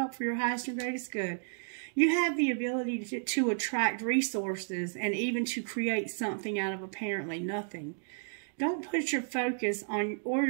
for your highest and greatest good. You have the ability to attract resources and even to create something out of apparently nothing. Don't put your focus on or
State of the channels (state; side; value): silent; left; digital silence